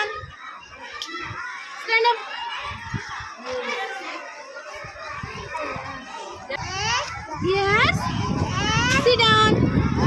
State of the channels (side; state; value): both; identical; correlation 1.00